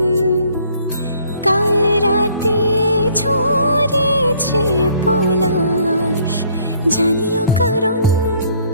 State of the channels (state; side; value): inverted; both; correlation -0.61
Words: কাল রাতে ঝরেছে পলাশ, জানিও কারণ